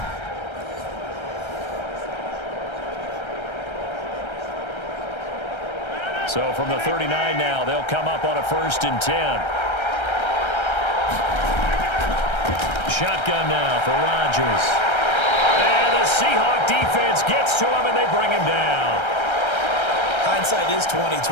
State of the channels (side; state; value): right; late; 1.3 ms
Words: So from the 39 now, they'll come up on a 1st and 10. Shotgun now for Rodgers. And the Seahawk defense gets to him, and they bring him down. Hindsight is